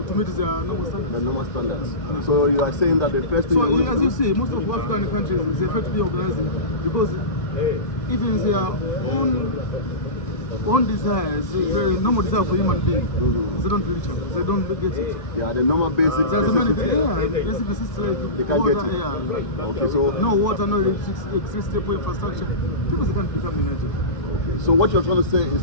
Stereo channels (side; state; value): right; late; 1.6 ms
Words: their normal standards. The normal standards. Yeah. So you are saying that the first thing as you see, most of African countries, they fail to be organizing because even their own desires, the normal desire for human beings, they don't reach up, they don't get it. Yeah, the normal basic necessity. Basic necessity, like they can't water, get it. Okay, so no water, no electricity, infrastructure. People can't become united. Okay. So what you're trying to say